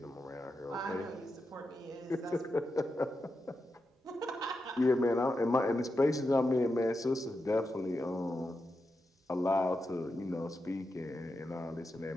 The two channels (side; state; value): both; normal; correlation 0.88